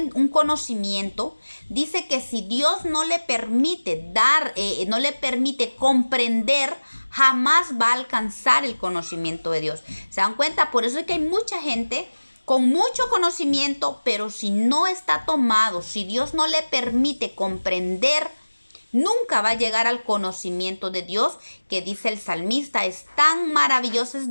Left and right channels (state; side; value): inverted; both; correlation -1.00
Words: conocimiento, dice que si Dios no le permite no le permite comprender, jamás va a alcanzar el conocimiento de Dios. ¿Se dan cuenta? Por eso es que hay mucha gente con mucho conocimiento, pero si no está tomado, si Dios no le permite comprender, nunca va a llegar al conocimiento de Dios, que dice el salmista: es tan maravilloso,